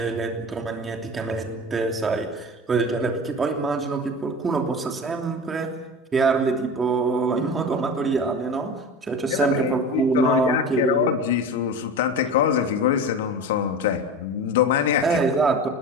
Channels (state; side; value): normal; both; correlation 0.31